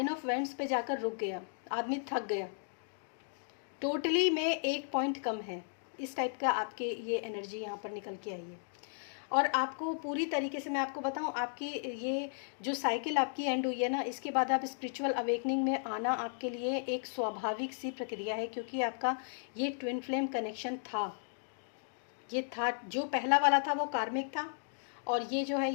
ऑफ वेंट्स पे जाकर रुक गया, आदमी थक गया, टोटली में एक पॉइंट कम है, इस टाइप का आपके ये एनर्जी यहाँ पर निकल के आई है। और आपको पूरी तरीके से मैं आपको बताऊं, आपकी ये जो साइकिल आपकी एंड हुई है ना, इसके बाद आप स्पिरिचुअल अवेकनिंग में आना आपके लिए एक स्वाभाविक सी प्रक्रिया है, क्योंकि आपका ये ट्विन फ्लेम कनेक्शन था, ये था, जो पहला वाला था वो कार्मिक था, और ये जो है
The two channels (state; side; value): silent; right; digital silence